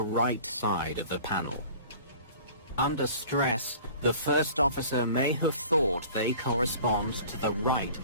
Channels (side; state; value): both; inverted; correlation -0.45